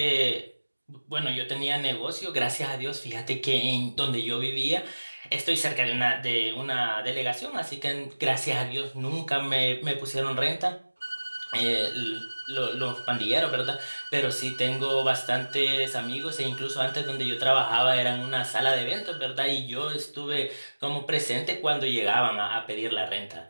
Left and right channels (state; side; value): inverted; both; correlation -1.00